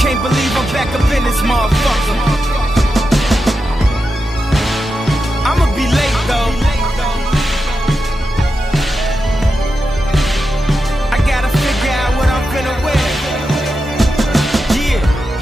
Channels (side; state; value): both; normal; correlation 0.89